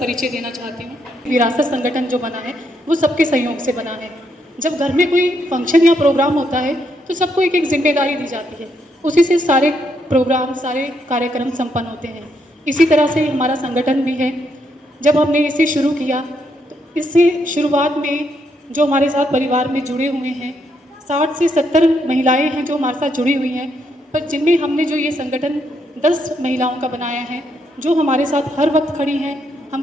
देना चाहती हूँ। विरासत संगठन जो बना है वो सबके सहयोग से बना है। जब घर में कोई फंक्शन या प्रोग्राम होता है तो सबको एक जिम्मेदारी दी जाती है, उसी से सारे प्रोग्राम सारे कार्यक्रम संपन्न होते हैं। इसी तरह से हमारा संगठन भी है। जब हमने इसे शुरू किया तो इससे शुरुआत में जो हमारे साथ परिवार में जुड़े हुए हैं 60 से 70 महिलाएं हैं जो हमारे साथ जुड़ी हुई हैं, पर जिनमें हमने जो ये संगठन 10 महिलाओं का बनाया है जो हमारे साथ हर वक्त खड़ी हैं। हम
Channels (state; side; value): normal; both; correlation 0.76